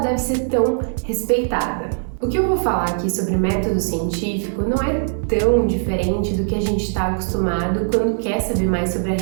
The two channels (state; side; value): silent; left; digital silence